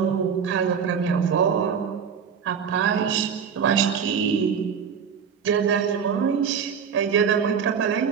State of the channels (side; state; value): left; quieter; 7.0 dB